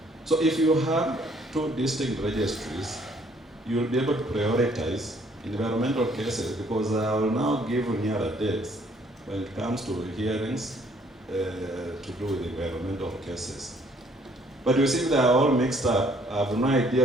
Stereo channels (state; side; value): normal; both; correlation 0.63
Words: So if you have two distinct registries, you will be able to prioritize environmental cases, because I will now give nearer dates when it comes to hearings to do with environmental cases. But you see, they are all mixed up. I have no idea